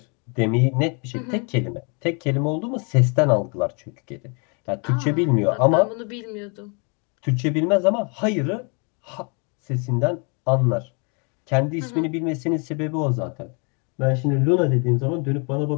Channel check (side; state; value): right; quieter; 35.5 dB